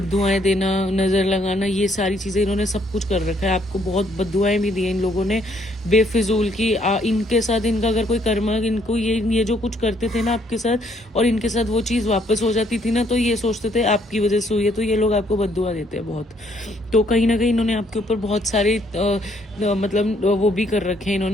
देना, नज़र लगाना, ये सारी चीज़ें इन्होंने सब कुछ कर रखा है। आपको बहुत बद्दुआएं भी दी हैं इन लोगों ने बेफिजूल की। इनके साथ इनका अगर कोई कर्मा, इनको ये जो कुछ करते थे ना आपके साथ, और इनके साथ वो चीज़ वापस हो जाती थी ना, तो ये सोचते थे आपकी वजह से हुई है, तो ये लोग आपको बद्दुआ देते हैं बहुत। तो कहीं ना कहीं इन्होंने आपके ऊपर बहुत सारे मतलब वो भी कर रखे हैं,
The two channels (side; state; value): both; normal; correlation 0.68